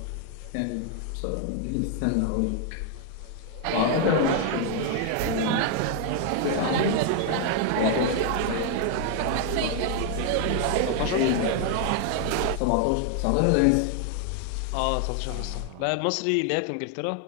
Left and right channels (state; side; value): different; both; correlation 0.00